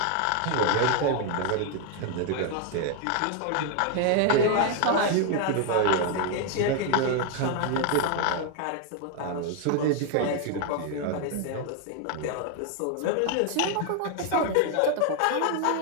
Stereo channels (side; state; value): both; different; correlation 0.01